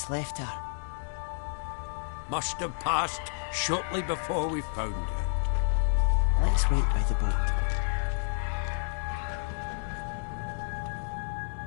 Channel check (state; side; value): silent; right; digital silence